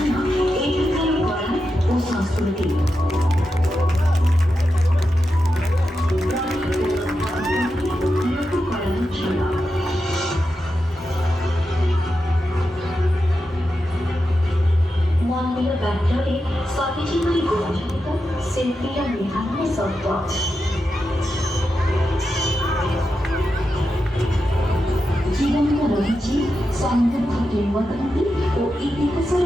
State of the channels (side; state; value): both; normal; correlation 0.88